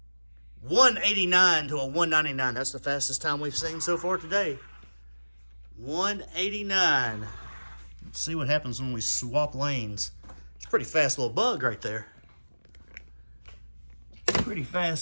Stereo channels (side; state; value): both; inverted; correlation -1.00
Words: 189 to a 199. That's the fastest time we've seen so far today. 189. Let's see what happens when we swap lanes. It's a pretty fast little bug right there. Pretty